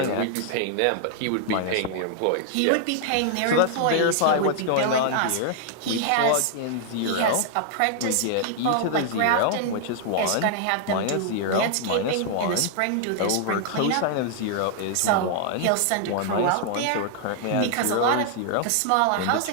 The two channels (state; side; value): different; both; correlation -0.01